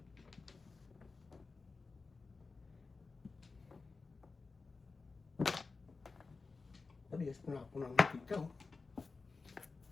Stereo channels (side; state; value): right; quieter; 4.2 dB